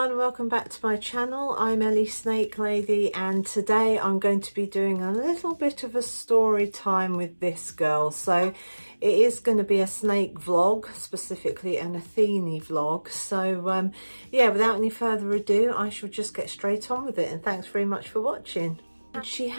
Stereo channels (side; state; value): both; inverted; correlation -1.00